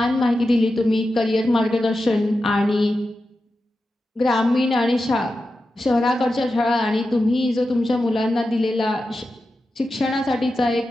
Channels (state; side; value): normal; both; correlation 0.91